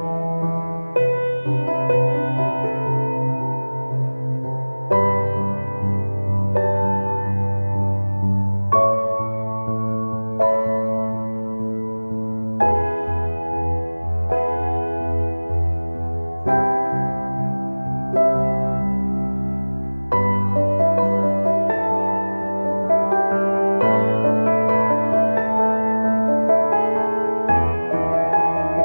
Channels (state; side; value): inverted; both; correlation -1.00